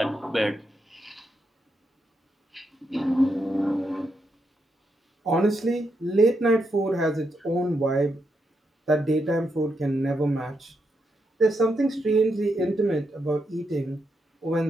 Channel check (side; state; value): both; normal; correlation 0.82